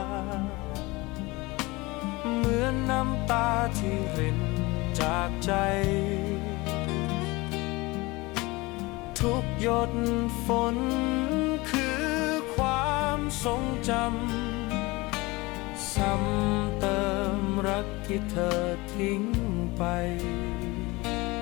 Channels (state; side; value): quieter; right; 23.0 dB